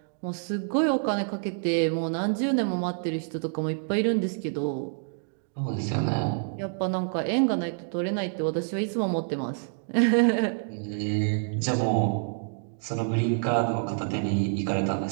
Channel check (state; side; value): silent; left; digital silence